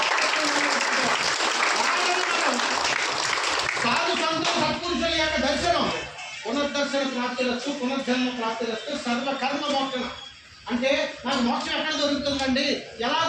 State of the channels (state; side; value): identical; both; correlation 1.00